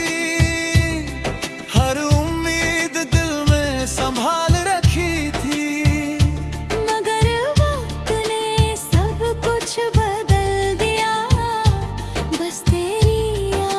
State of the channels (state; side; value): identical; both; correlation 1.00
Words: हर उम्मीद दिल में संभाल रखी थी। मगर वक्त ने सब कुछ बदल दिया, बस तेरी